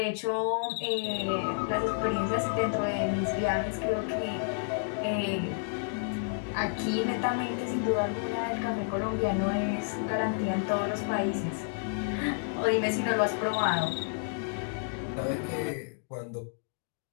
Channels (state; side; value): silent; right; digital silence